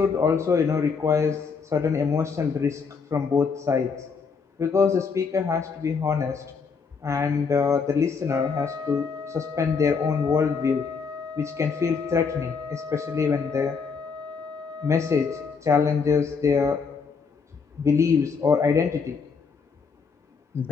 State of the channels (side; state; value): right; quieter; 5.4 dB